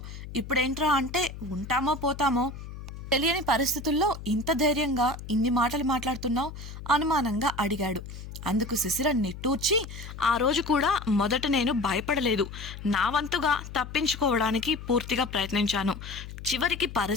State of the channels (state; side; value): noise; left; hum, 11 dB below the sound